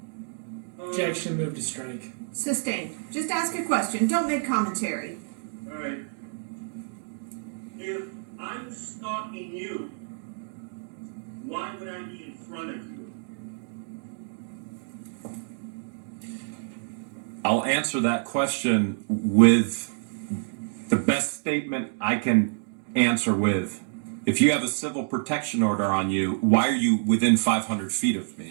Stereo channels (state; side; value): silent; left; 60 dB below the other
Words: Objection, move to strike. Sustained. Just ask a question. Don't make commentary. Alright. If I'm stalking you, why would I be in front of you? I'll answer that question with the best statement I can answer with. If you have a civil protection order on you, why are you within 500 feet of